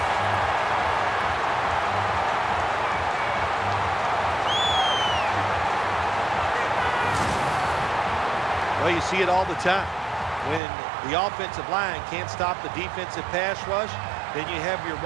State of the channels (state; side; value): drops out; left; at 10.6 s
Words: Well, you see it all the time. When the offensive line can't stop the defensive pass rush, then you have your